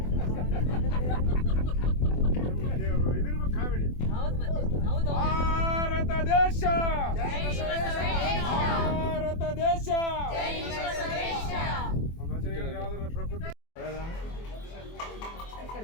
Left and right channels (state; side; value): late; right; 24 ms